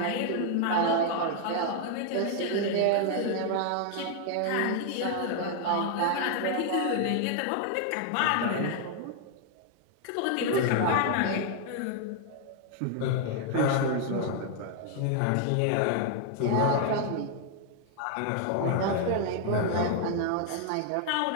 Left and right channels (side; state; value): both; different; correlation 0.00